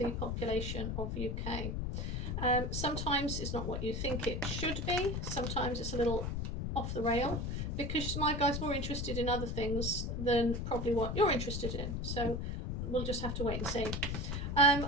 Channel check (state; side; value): noise; left; rumble, 2 dB below the sound